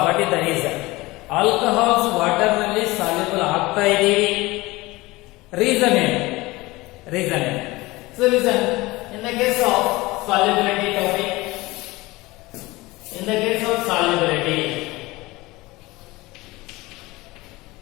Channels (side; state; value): right; quieter; 21.0 dB